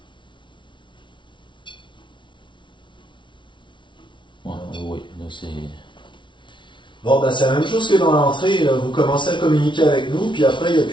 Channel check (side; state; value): right; late; 0.24 ms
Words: Oui, là c'est... Bon, ben c'est la même chose que dans l'entrée, là. Vous commencez à communiquer avec nous, puis après, il n'y a